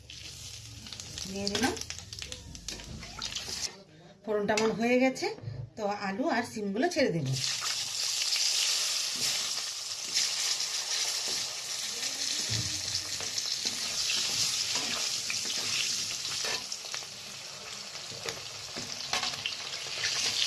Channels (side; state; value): both; identical; correlation 1.00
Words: দিয়ে দিলাম। ফোড়নটা আমার হয়ে গেছে। তো আলু আর শিমগুলো ছেড়ে দেব।